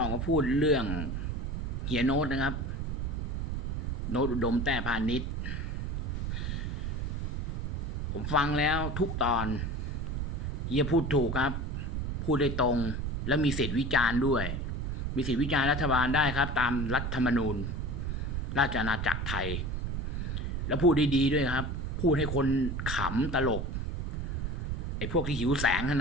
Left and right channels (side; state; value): right; noise; rumble, 2 dB below the sound